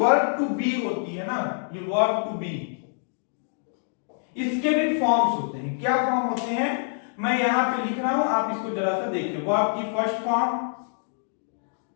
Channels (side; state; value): right; silent; digital silence